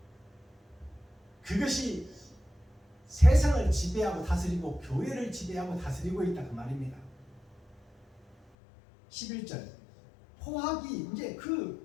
그것이 세상을 지배하고 다스리고 교회를 지배하고 다스리고 있다 그 말입니다. 11절 포악이 이제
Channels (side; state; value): right; drops out; at 8.3 s